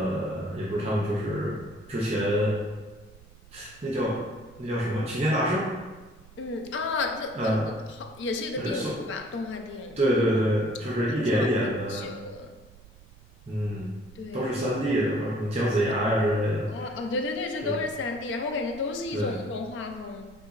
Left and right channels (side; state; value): right; noise; rumble, 23 dB below the sound